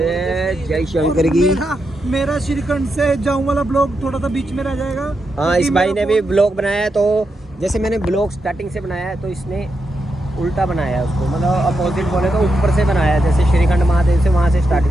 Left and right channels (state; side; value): normal; both; correlation 0.85